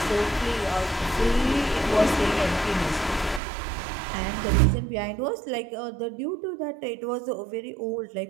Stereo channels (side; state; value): left; drops out; at 3.4 s